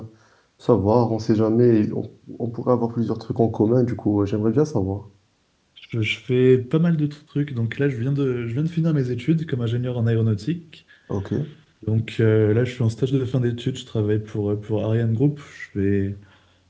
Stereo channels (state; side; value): identical; both; correlation 1.00